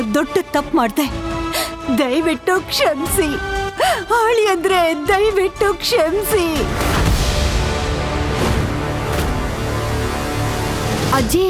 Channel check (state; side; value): identical; both; correlation 1.00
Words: ದೊಡ್ಡ ತಪ್ಪು ಮಾಡಿದೆ, ದಯವಿಟ್ಟು ಕ್ಷಮಿಸಿ. ಅಳಿಯಂದ್ರೆ ದಯವಿಟ್ಟು ಕ್ಷಮಿಸಿ. ಅಜ್ಜಿ,